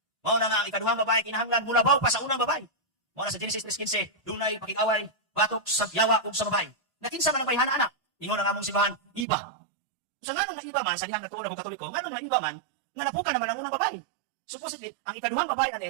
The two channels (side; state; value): left; drops out; at 9.2 s